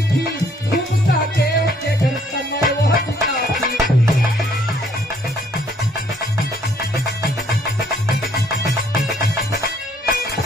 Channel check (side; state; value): both; normal; correlation 0.64